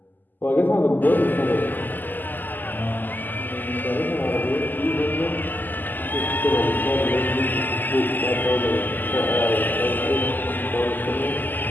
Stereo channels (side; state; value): right; late; 0.087 ms